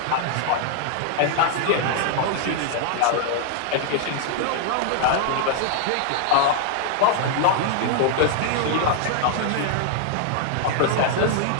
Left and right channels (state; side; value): different; both; correlation 0.00